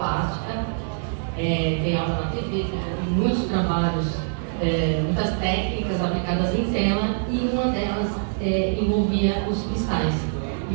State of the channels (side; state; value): left; silent; digital silence